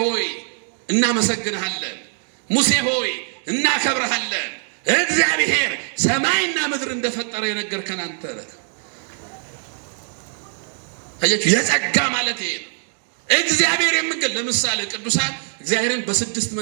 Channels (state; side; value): silent; left; 55 dB below the other